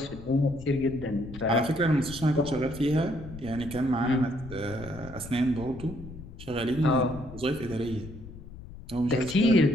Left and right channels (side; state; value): left; noise; rumble, 14 dB below the sound